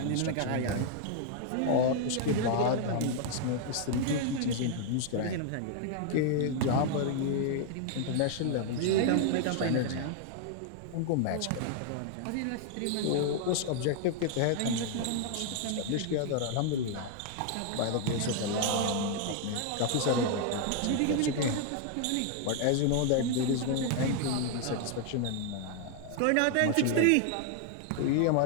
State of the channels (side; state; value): both; different; correlation 0.00